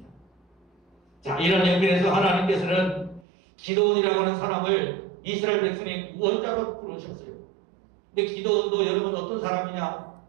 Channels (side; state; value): left; drops out; at 3.2 s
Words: 자, 이런 형편에서 하나님께서는 기드온이라고 하는 사람을 이스라엘 백성의 구원자로 부르셨어요. 근데 기드온도 여러분 어떤 사람이냐?